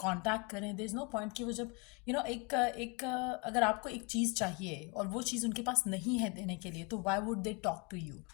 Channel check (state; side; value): quieter; right; 31.4 dB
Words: कांटेक्ट करें, देयर इज़ नो पॉइंट कि वो जब अगर आपको एक चीज़ चाहिए और वो चीज़ उनके पास नहीं है देने के लिए, तो why would they talk to you